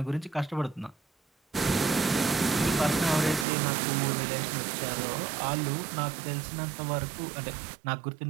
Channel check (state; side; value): drops out; left; at 3.5 s